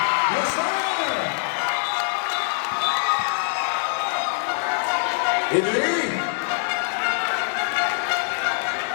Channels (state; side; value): silent; right; 63 dB below the other